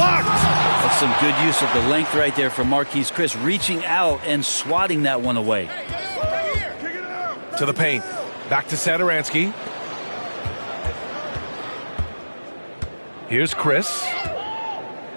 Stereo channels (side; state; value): both; inverted; correlation -1.00